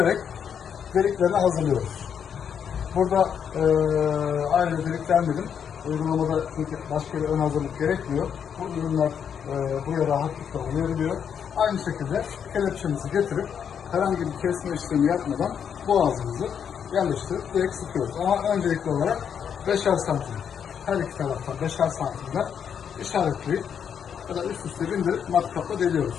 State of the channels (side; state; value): right; quieter; 7.8 dB